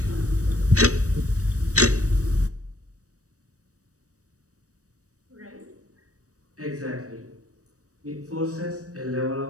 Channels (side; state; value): left; late; 0.66 ms